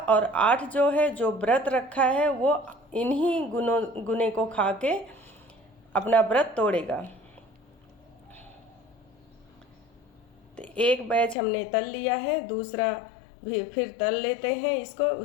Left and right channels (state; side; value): drops out; right; at 11.4 s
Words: 8 जो है, जो व्रत रखा है वो इन्हीं गुने को खा के अपना व्रत तोड़ेगा। तो एक बैच हमने तल लिया है, दूसरा भी फिर तल लेते हैं इसको